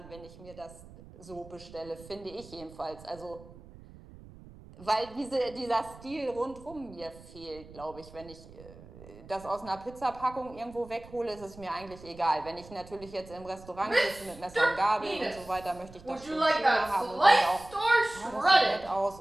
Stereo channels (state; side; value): noise; right; rumble, 19 dB below the sound